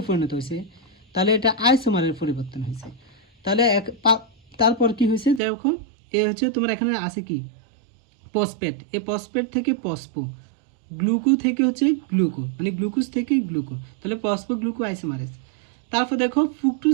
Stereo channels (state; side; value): drops out; left; at 5.4 s